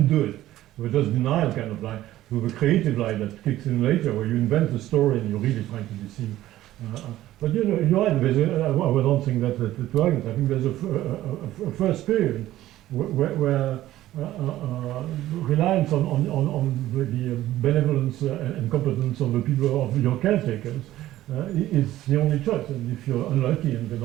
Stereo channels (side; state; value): left; quieter; 14.5 dB